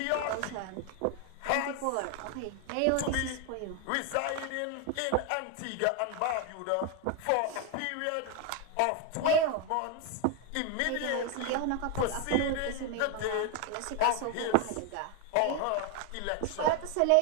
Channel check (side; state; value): both; different; correlation 0.01